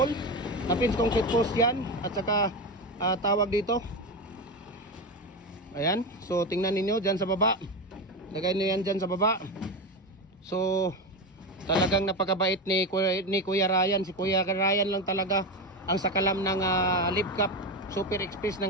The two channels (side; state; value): both; normal; correlation 0.17